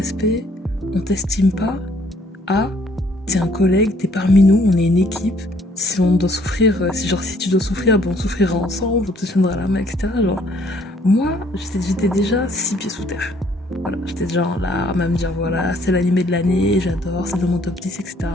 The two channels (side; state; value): both; normal; correlation 0.63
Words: on t'estime pas, à t'es un collègue, t'es parmi nous, on est une équipe. Si on doit souffrir, si tu dois souffrir, ben on souffrira ensemble, on te tiendra la main, etc. Genre, moi, j'étais déjà 6 pieds sous terre. Voilà, j'étais déjà en larmes à me dire voilà, c'est l'animé de l'année, j'adore, c'est dans mon top 10, etc.